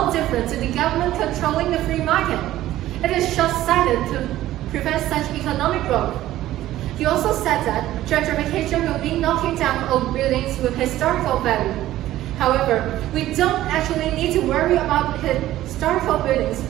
different to the government controlling the free market. It is short-sighted to prevent such economic growth. He also said that gentrification will be knocking down old buildings with historical value. However, we don't actually need to worry about historical buildings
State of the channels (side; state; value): left; quieter; 14.4 dB